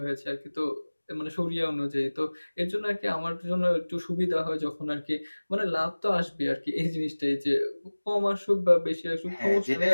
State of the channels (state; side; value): inverted; both; correlation -1.00